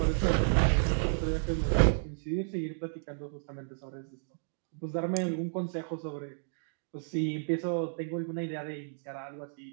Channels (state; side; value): silent; left; digital silence